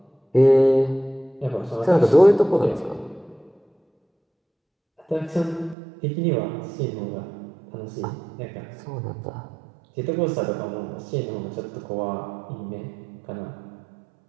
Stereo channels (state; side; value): drops out; left; at 5.8 s